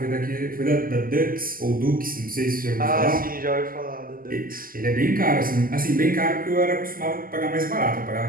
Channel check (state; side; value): late; left; 0.42 ms